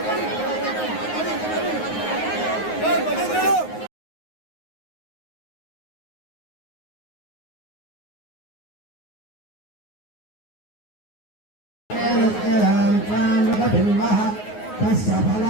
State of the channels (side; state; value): right; late; 9.5 ms